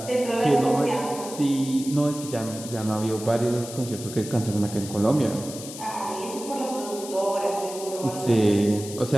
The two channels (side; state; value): left; noise; hiss, 12 dB below the sound